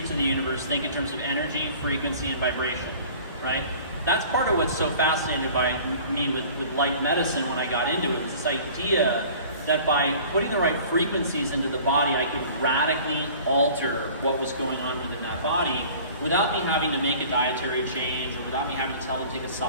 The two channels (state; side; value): inverted; both; correlation -0.46